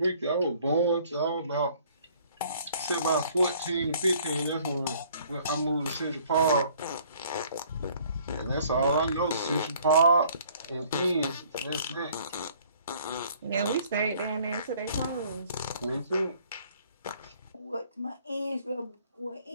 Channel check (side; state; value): both; inverted; correlation -0.58